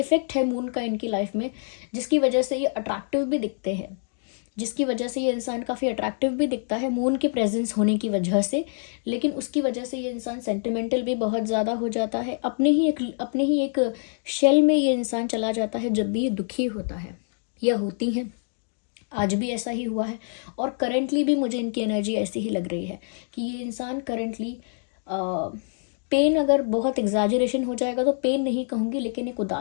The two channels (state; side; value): silent; right; 59 dB below the other